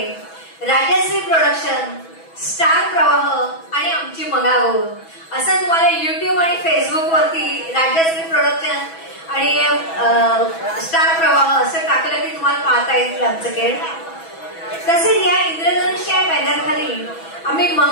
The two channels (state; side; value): late; right; 6.1 ms